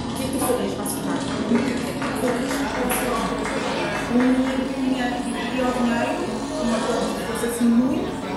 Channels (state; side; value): identical; both; correlation 1.00